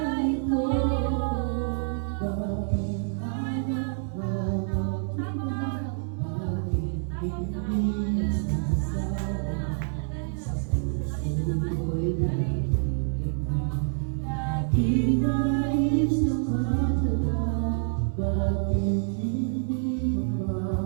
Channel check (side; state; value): left; silent; digital silence